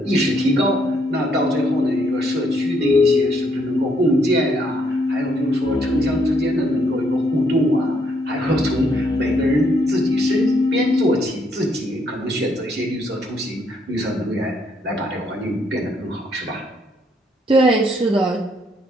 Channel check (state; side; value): normal; both; correlation 0.71